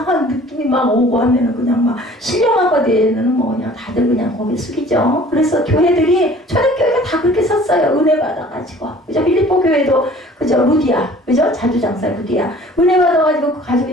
느낌이 막 오고 하면은 그냥 막 신령화가 되는 뭐 그냥 다들 그냥 고개 숙이죠. 그래서 교회들이 초대교회가 다 그렇게 섰어요. 은혜 받아가지고. 그죠? 필리포 교회도 그죠? 루디아. 그죠? 자주장사 루디아. 은혜 받아가지고 그 가족이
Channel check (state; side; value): normal; both; correlation 0.49